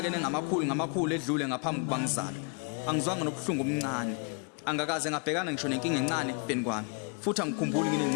ngamakhulu edlule ngaphambi kuba ngizalwe. Angizwanga nobuhlungu omncane. Angakaze ngabhekana ngisho nenkinga encane ekufeni kwami. Futhi angikhumbuli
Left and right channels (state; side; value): quieter; right; 36.6 dB